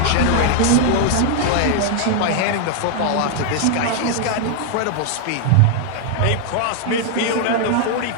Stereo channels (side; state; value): both; different; correlation 0.00